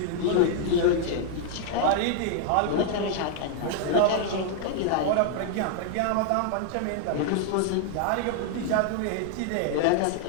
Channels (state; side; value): different; both; correlation 0.00